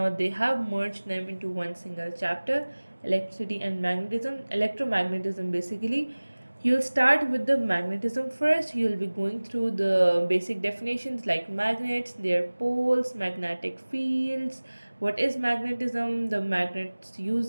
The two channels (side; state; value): both; inverted; correlation -1.00